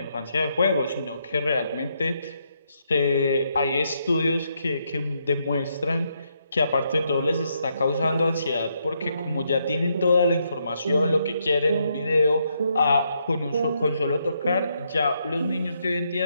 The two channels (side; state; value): both; inverted; correlation -0.77